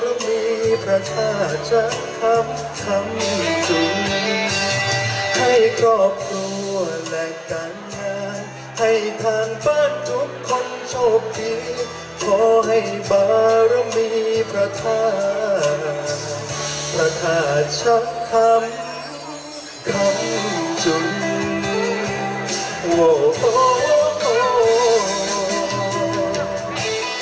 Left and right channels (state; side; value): identical; both; correlation 1.00